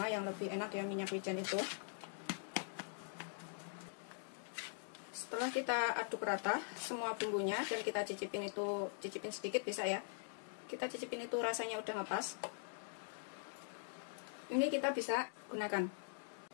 yang lebih enak ya minyak wijen itu. Setelah kita aduk rata semua bumbunya dan kita cicipin sedikit bisa ya. Kita cicipin itu rasanya udah ngepas. Ini kita bisa gunakan.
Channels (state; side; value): silent; right; digital silence